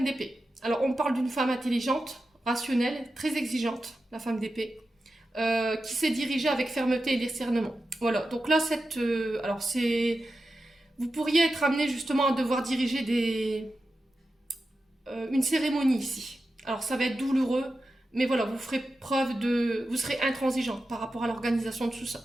d'épée. Alors, on parle d'une femme intelligente, rationnelle, très exigeante, la femme d'épée, qui s'est dirigée avec fermeté et discernement. Voilà, donc là, vous pourriez être amené justement à devoir diriger une cérémonie ici. Alors ça va être douloureux, mais voilà, vous serez intransigeant par rapport à l'organisation de tout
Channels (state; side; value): normal; both; correlation 0.91